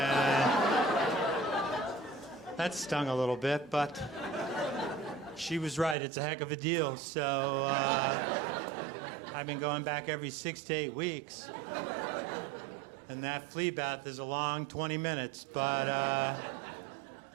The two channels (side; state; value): left; drops out; at 6.0 s